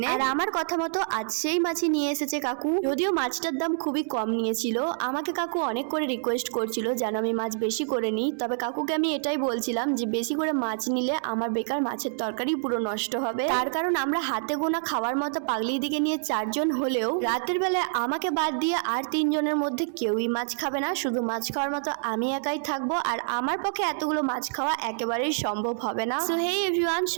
আর আমার কথা মতো আজ সেই মাছই নিয়ে এসেছে কাকু। যদিও মাছটার দাম খুবই কম নিয়েছিল, আমাকে কাকু অনেক করে রিকোয়েস্ট করছিল যেন আমি মাছ বেশি করে নিই। তবে কাকুকে আমি এটাই বলছিলাম যে বেশি করে মাছ নিলে আমার বেকার মাছের তরকারি পুরো নষ্ট হবে। তার কারণ আমরা হাতে গোনা খাওয়ার মতো পাগলি দিকে নিয়ে 4 জন হলেও রাতের বেলায় আমাকে বাদ দিয়ে আর 3 জনের মধ্যে কেউই মাছ খাবে না, শুধু মাছ খাওয়ার মতো আমি একাই থাকবো। আর আমার পক্ষে এতগুলো মাছ খাওয়া একেবারেই সম্ভব হবে না। সো হেই এভরিওয়ান,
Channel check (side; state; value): left; silent; 60 dB below the other